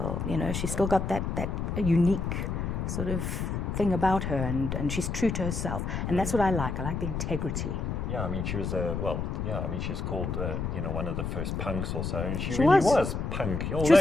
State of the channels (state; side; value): noise; left; rumble, 2 dB below the sound